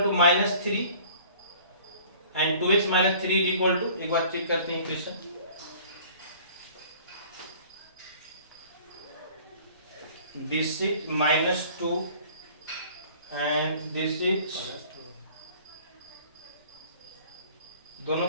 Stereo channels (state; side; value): inverted; both; correlation -0.50